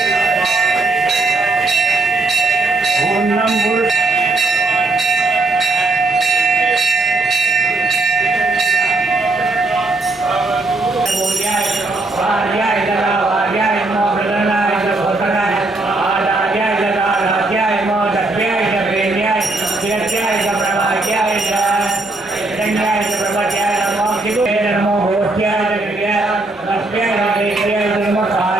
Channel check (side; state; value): left; quieter; 3.1 dB